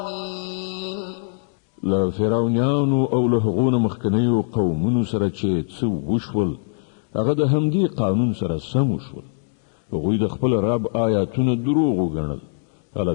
له فرعونیانو او له هغو مخکنیو قومونو سره چې څه وشول هغه د همدې قانون سره سم وشول. هغوی د خپل رب آیاتونه دروغ وګڼل. هله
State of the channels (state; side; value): silent; right; digital silence